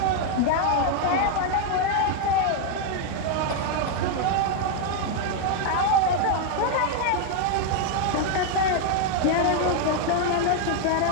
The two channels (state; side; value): different; both; correlation 0.00